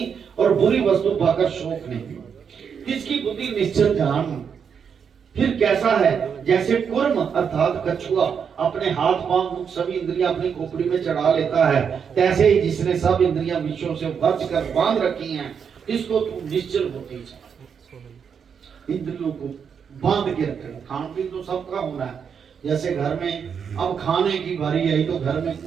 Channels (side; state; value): left; quieter; 7.0 dB